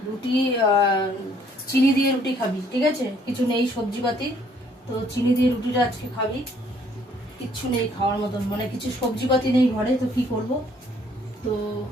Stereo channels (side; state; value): both; normal; correlation 0.63